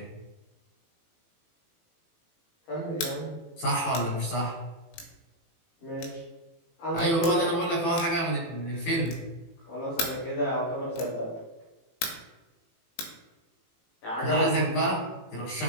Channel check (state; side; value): late; right; 18 ms